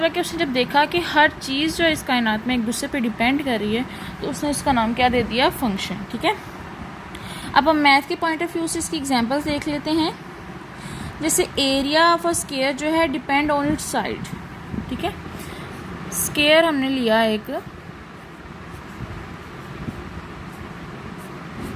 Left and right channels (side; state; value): both; identical; correlation 1.00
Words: है कि उसने जब देखा कि हर चीज़ जो है इस कायनात में एक दूसरे पे डिपेंड कर रही है, तो उसने इसका नाम क्या दे दिया? फंक्शन। ठीक है, अब हम मैथ के पॉइंट ऑफ व्यू से इसकी एग्जांपल्स देख लेते हैं। जैसे एरिया ऑफ अ स्क्वायर जो है डिपेंड ऑन इट्स साइड। ठीक है, स्क्वायर हमने लिया एक,